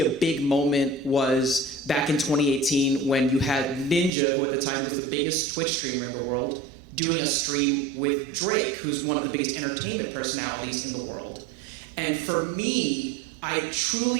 big moment was back in 2018 when you had Ninja, who at the time was the biggest Twitch streamer in the world, doing a stream with Drake, who's one of the biggest entertainment personalities in the world. And for me, I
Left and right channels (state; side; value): drops out; left; at 4.1 s